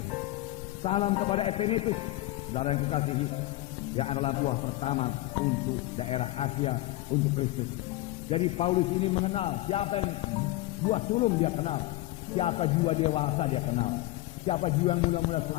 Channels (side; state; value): right; quieter; 18.0 dB